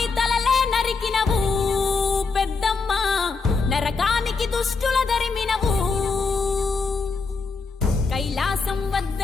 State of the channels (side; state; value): right; quieter; 4.5 dB